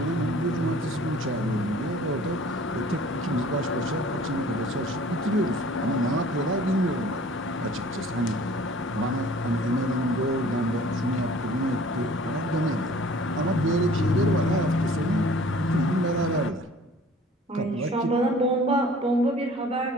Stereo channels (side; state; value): both; normal; correlation 0.50